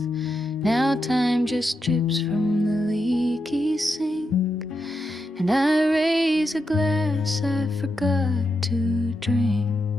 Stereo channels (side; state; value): both; normal; correlation 0.85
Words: Now time just drips from the leaky sink, and I raise a glass I forgot to drink.